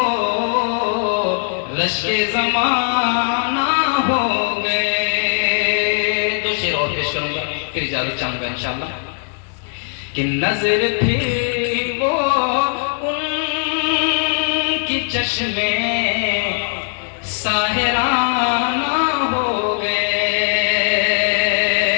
رشک زمانہ ہو گئے. دو شعر اور پیش کروں گا, پھر اجازت چاہوں گا انشاءاللہ. کہ نظر پھر وہ ان کی چشمے ساحرانہ ہو گئے.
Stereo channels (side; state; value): right; silent; 66 dB below the other